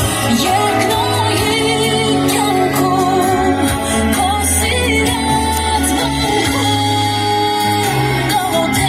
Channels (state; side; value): identical; both; correlation 1.00